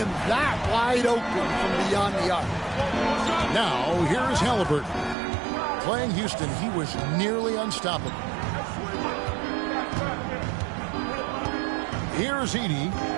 that wide open from beyond the arc. Now, here's Halliburton. Playing Houston, he was nearly unstoppable. Here's Edey.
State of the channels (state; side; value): drops out; left; at 5.2 s